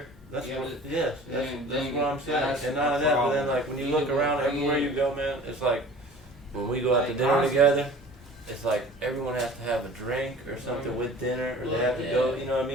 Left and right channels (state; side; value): normal; both; correlation 0.44